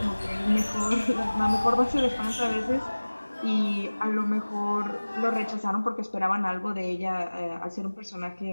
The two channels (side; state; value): both; inverted; correlation -1.00